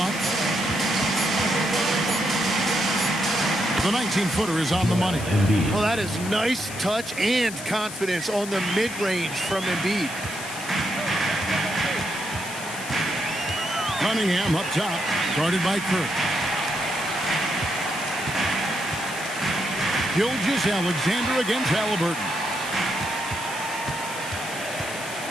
The 19-footer is on the money. Well, that is nice touch and confidence on the mid-range from Embiid. Cunningham up top, guarded by Kirk. Gilgeous-Alexander against Halliburton.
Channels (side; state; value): left; noise; hiss, 11 dB below the sound